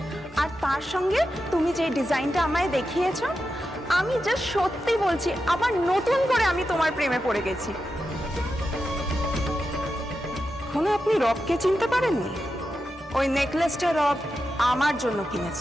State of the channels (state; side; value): normal; both; correlation 0.89